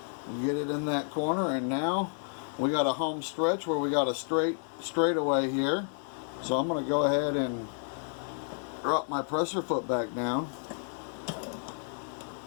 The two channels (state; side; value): silent; right; 57 dB below the other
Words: Get it in that corner, and now we got a home stretch where we got a straightaway here. So I'm going to go ahead and drop my presser foot back down,